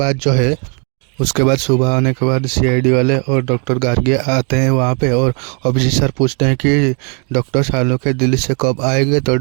बाद सुबह होने के बाद सीआईडी वाले और डॉक्टर गार्गी आते हैं वहाँ पे। और अभिजीत सर पूछते हैं कि डॉक्टर सालों के दिल्ली से कब आएंगे। तो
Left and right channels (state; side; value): quieter; left; 37.8 dB